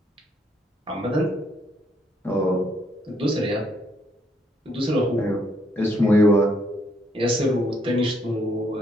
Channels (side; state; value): both; normal; correlation 0.71